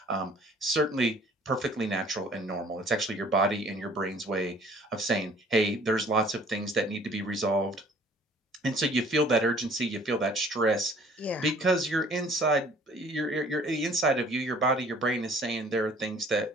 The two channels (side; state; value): both; normal; correlation 0.54